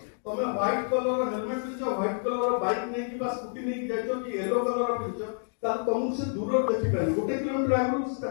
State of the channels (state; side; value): silent; right; digital silence